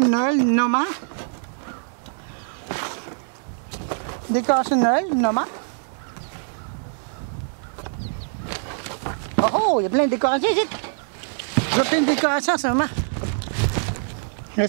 de Noël, Noma. Décorations de Noël, Noma. Oh, il y a plein de décorations ici. Il y a plein de décorations en ce moment. Là,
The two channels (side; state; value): left; silent; digital silence